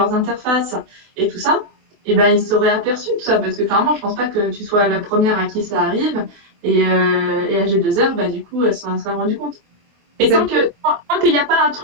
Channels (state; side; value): late; left; 24 ms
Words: interfaces et tout ça, et ben, ils s'auraient aperçu tout ça. Parce que clairement, je pense pas que tu sois la première à qui ça arrive. Et à G2R, bah, du coup, elles s'en sont rendu compte. Et Et ça, tant qu'il n'y a pas un